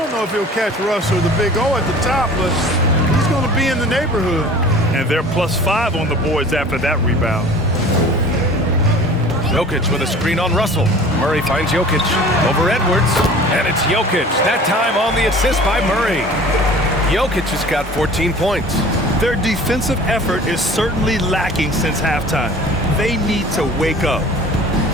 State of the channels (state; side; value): normal; both; correlation 0.44